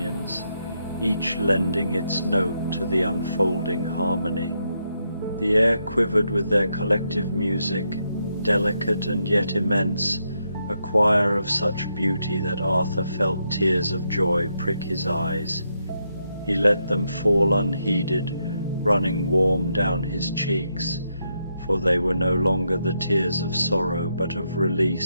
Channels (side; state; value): both; inverted; correlation -0.81